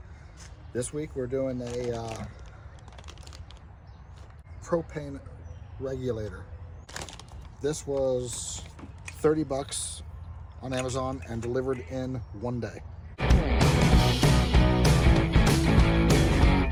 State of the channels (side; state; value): both; identical; correlation 1.00